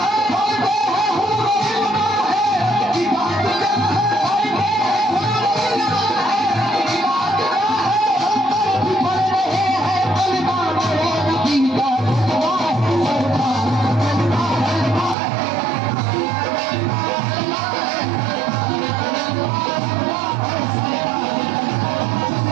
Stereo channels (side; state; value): left; drops out; at 15.2 s